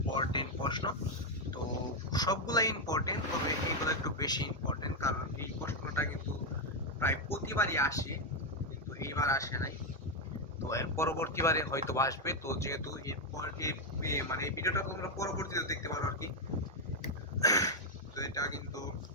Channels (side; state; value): both; normal; correlation 0.04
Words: প্রশ্ন। তো সবগুলাই ইম্পর্টেন্ট, তবে এইগুলো একটু বেশি ইম্পর্টেন্ট, কারণ এই প্রশ্নটা কিন্তু প্রায় প্রতিবারই আসে, কিন্তু এইবার আসে নাই। তো এর পরবর্তীবারে হয়তো আসবে। তো যেহেতু এরপর মানে এই ভিডিওটা তোমরা পরবর্তীতে দেখতে পারো আর কি। তো এটা কিন্তু